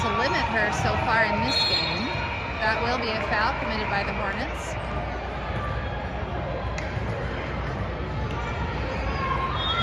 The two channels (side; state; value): both; identical; correlation 1.00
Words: limit her so far in this game. That will be a foul committed by the Hornets.